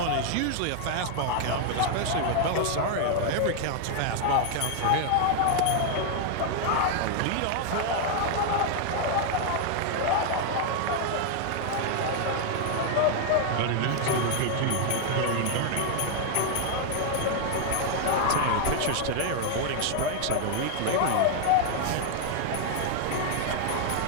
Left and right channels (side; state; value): both; different; correlation 0.00